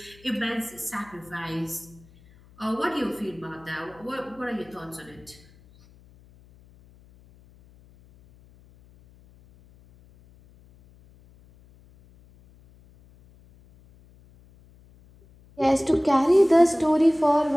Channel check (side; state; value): left; noise; hum, 27 dB below the sound